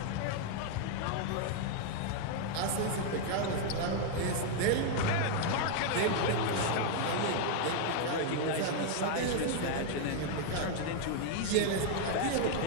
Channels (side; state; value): both; different; correlation 0.00